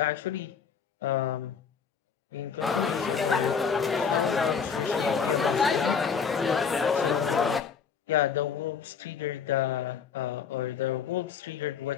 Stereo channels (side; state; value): right; quieter; 6.4 dB